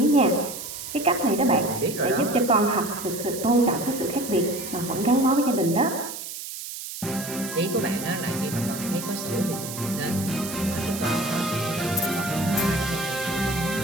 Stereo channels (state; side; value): noise; right; hiss, 9 dB below the sound